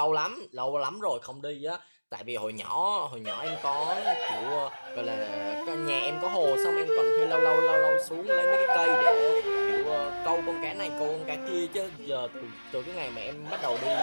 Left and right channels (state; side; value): inverted; both; correlation -1.00